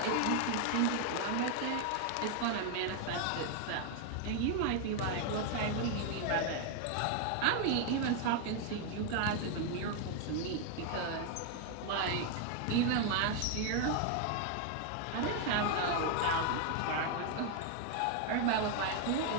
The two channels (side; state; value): both; different; correlation 0.00